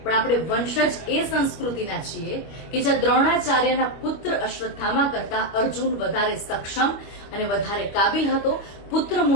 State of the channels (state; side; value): late; right; 25 ms